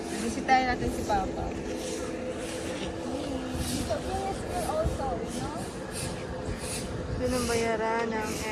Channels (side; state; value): both; identical; correlation 1.00